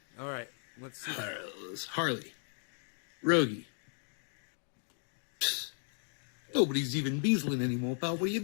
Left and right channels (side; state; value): right; silent; 54 dB below the other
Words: Alright, let's see. Harley. Rogie. Psst. Nobody's even beezling anymore, pal. What are you